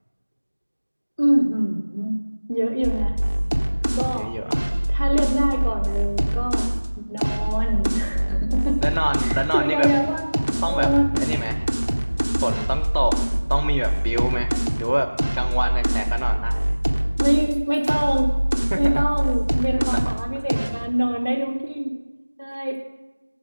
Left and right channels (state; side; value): inverted; both; correlation -1.00